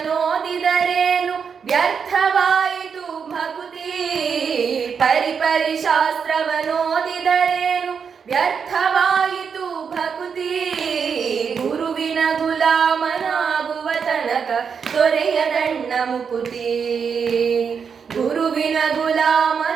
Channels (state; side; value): quieter; left; 6.4 dB